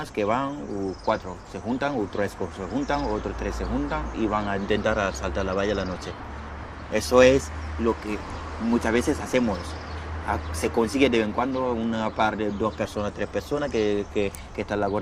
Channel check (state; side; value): identical; both; correlation 1.00